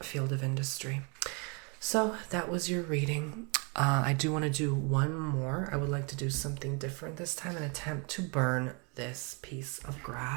field of industry. So that was your reading. I do want to do one more. I would like to do something different this time and attempt to burn this piece of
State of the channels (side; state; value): left; quieter; 33.5 dB